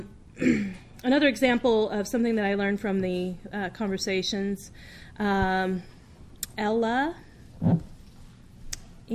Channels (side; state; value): both; identical; correlation 1.00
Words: example of something that I learned from the conversations, Ella